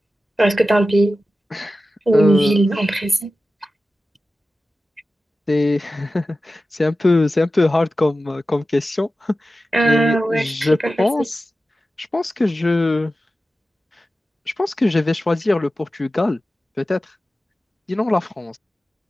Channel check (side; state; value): both; normal; correlation 0.94